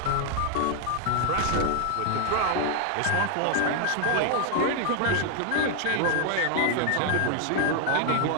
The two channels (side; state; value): both; different; correlation 0.00